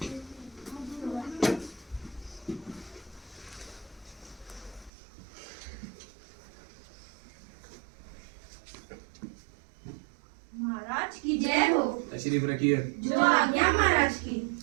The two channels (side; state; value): left; drops out; at 4.9 s